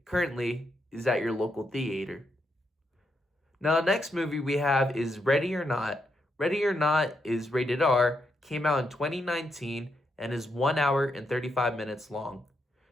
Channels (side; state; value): both; normal; correlation 0.81